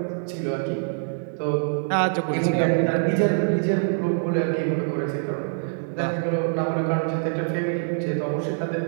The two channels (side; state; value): left; silent; digital silence